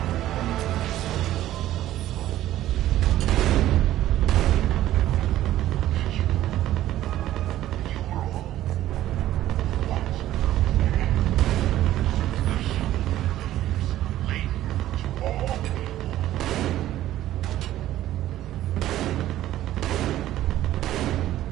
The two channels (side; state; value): left; quieter; 13.7 dB